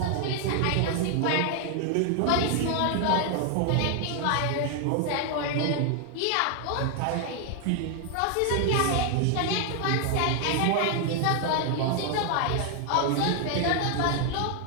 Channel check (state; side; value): different; both; correlation 0.00